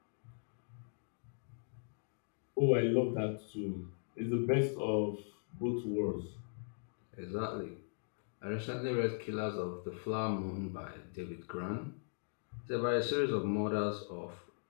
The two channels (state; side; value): silent; right; digital silence